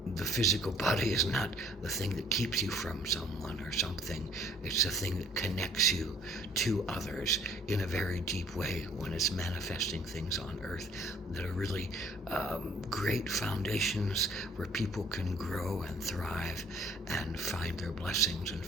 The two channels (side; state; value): both; normal; correlation 0.57